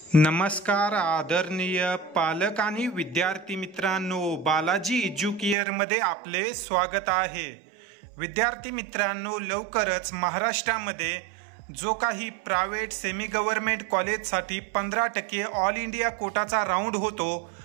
नमस्कार आदरणीय पालक आणि विद्यार्थी मित्रांनो, बालाजी एज्युकेअर मध्ये आपले स्वागत आहे। विद्यार्थी मित्रांनो, लवकरच महाराष्ट्रामध्ये जो काही प्रायव्हेट सेमी गव्हर्नमेंट कॉलेजसाठी 15% ऑल इंडिया कोटाचा राऊंड होतो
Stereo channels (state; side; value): drops out; left; at 5.6 s